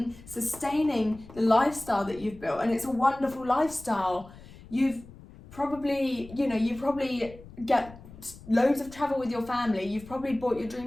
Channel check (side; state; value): left; noise; rumble, 19 dB below the sound